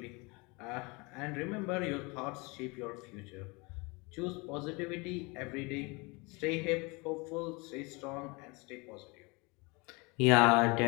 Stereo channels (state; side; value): quieter; right; 27.6 dB